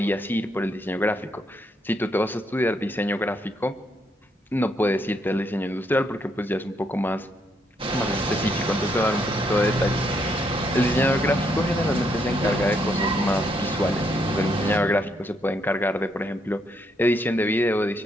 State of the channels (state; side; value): normal; both; correlation 0.75